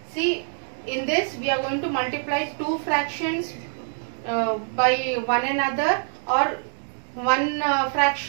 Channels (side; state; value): left; silent; 62 dB below the other